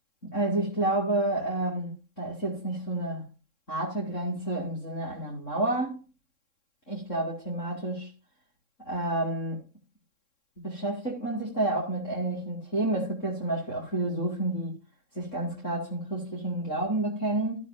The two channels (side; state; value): right; late; 3.7 ms